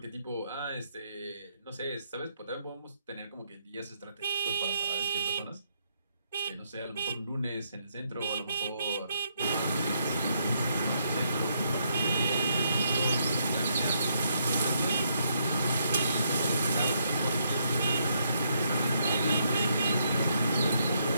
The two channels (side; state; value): both; inverted; correlation -0.75